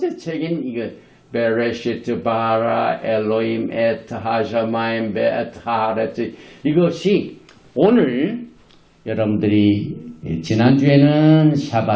책인 이거 베레시트 바라 엘로임 엣 하샤마임 베엣 하레츠, 이것이 오늘 여러분들이 지난주에는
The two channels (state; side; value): identical; both; correlation 1.00